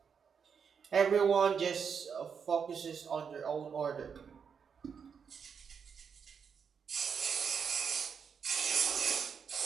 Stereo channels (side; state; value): left; quieter; 6.6 dB